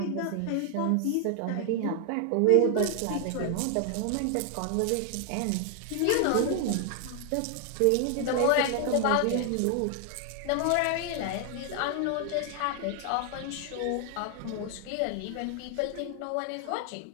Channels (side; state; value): both; different; correlation 0.00